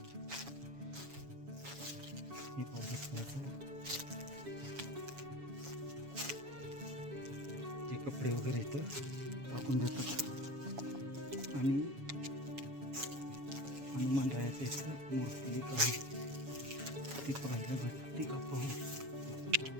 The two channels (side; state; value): left; late; 7.1 ms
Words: हे ते कपडे वगैरे इथं टाकून देतात आणि हनुमान रायाचं इथं मूर्ती एक आहे, ती पाहायला भेटते का पाहू.